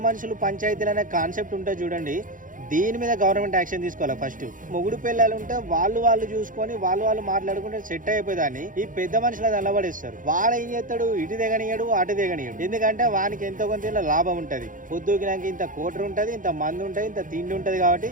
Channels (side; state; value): left; late; 0.39 ms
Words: మనుషులు పంచాయతీలు అనే కాన్సెప్ట్ ఉంటే చూడండి, దీని మీద గవర్నమెంట్ యాక్షన్ తీసుకోవాలి. ఫస్ట్ మొగుడు పిల్లలు ఉంటే వాళ్ళు చూసుకొని వాళ్ళు మాట్లాడుకుంటే సెట్ అయిపోయేదాన్ని ఈ పెద్ద మనుషులు నిలబడేస్తారు. వాడు ఏం చేస్తాడు, ఇటు దిగనియడు అటు దిగనియడు. ఎందుకంటే వానికి ఎంతో కొంత లాభం ఉంటది. పొద్దుకినాక ఇంత కోటర్ ఉంటది, ఇంత మంది ఉంటది, ఇంత తిండి ఉంటది. కాబట్టి